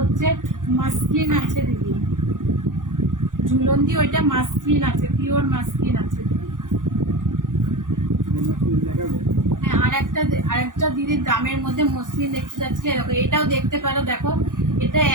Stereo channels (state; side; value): late; left; 0.88 ms